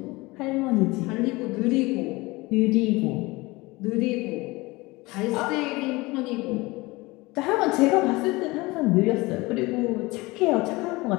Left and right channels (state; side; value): quieter; right; 22.4 dB